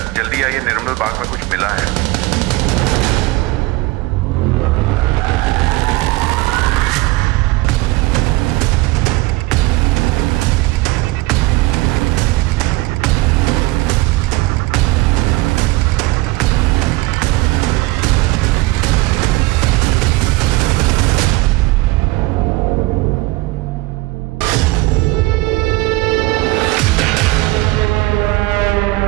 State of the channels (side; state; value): left; quieter; 21.0 dB